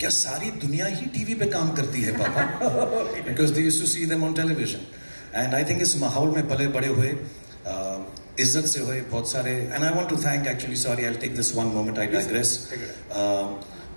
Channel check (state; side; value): inverted; both; correlation -1.00